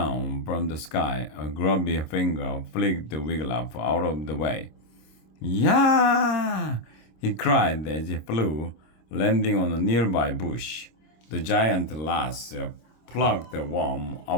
from the sky. A grubby finger flicked Wiglaf out of the way. "Yeah!" he cried as he flew, landing on a nearby bush. The giant lass plucked the worm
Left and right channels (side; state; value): right; late; 26 ms